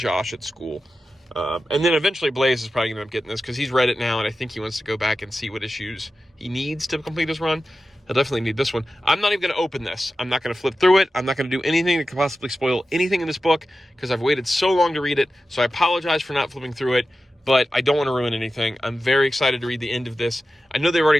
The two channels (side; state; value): both; normal; correlation 0.93